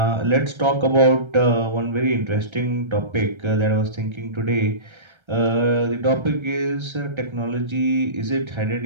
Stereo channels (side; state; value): left; late; 1.3 ms